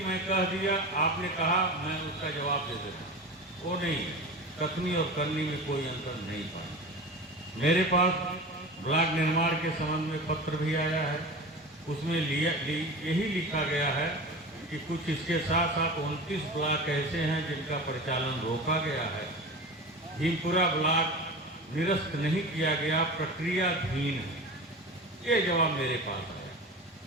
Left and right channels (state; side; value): normal; both; correlation 0.31